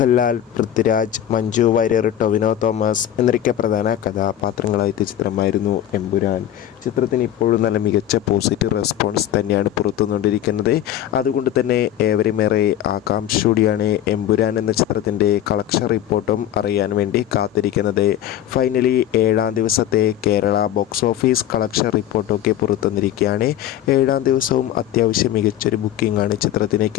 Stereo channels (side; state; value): right; quieter; 11.5 dB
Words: പൃഥ്വിരാജ്, മഞ്ജു വാര്യർ, ടൊവിനോ തോമസ് എന്നൊക്കെ പ്രധാന കഥാപാത്രങ്ങളായ ചിത്രമായിരുന്നു എമ്പുരാൻ. ചിത്രത്തിന് ഇപ്പോഴും നല്ല മികച്ച പോസിറ്റീവ് റെസ്പോൺസ് തന്നെയാണ് പുറത്തുകൊണ്ടിരിക്കുന്നത്. അതുകൊണ്ട് തന്നെ ഏവരുമേറെ ആകാംക്ഷയോടെയാണ് എമ്പുരാൻ എന്ന ചിത്രത്തിൻ്റെ കളക്ഷൻ റിപ്പോർട്ടും അറിയാൻ വേണ്ടി കാത്തിരിക്കുന്നത്. ഫൈനലി ഏഴാം ദിവസത്തെ കേരള ബോക്സ് ഓഫീസ് കളക്ഷൻ റിപ്പോർട്ടൊക്കെ പുറത്തുവന്നിരിക്കുകയാണ്. ഏഴാം ദിവസവും അത്യാവശ്യം മികച്ചൊരു ബുക്കിംഗ് ആണ് ചിത്രത്തിന്